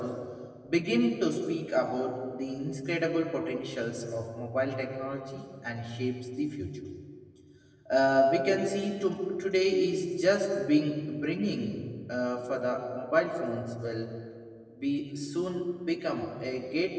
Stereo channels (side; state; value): both; identical; correlation 1.00